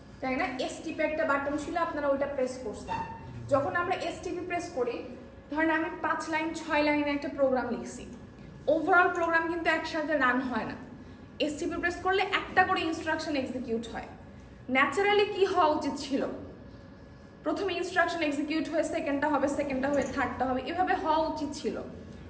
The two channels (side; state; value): both; identical; correlation 1.00